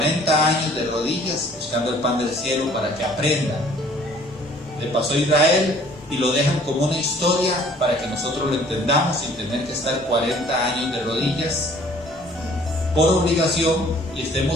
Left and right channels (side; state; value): both; normal; correlation 0.55